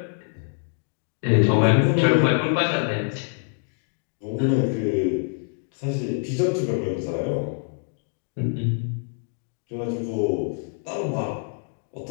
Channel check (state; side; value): silent; right; 60 dB below the other